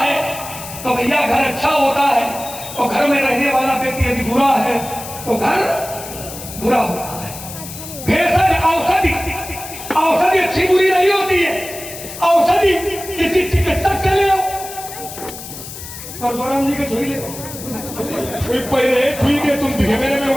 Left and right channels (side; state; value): left; noise; hiss, 12 dB below the sound